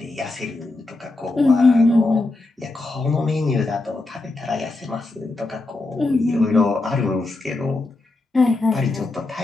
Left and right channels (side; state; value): right; quieter; 3.1 dB